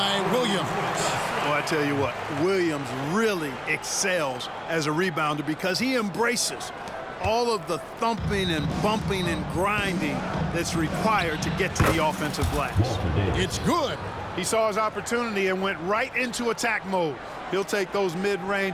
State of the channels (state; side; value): identical; both; correlation 1.00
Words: Williams. Well, I tell you what, Williams really excels as a rebounder because he embraces all of the thumping and bumping and grinding that's required to get to the offensive glass. It's good. He saw his opportunity and went right into attack mode. He'll take those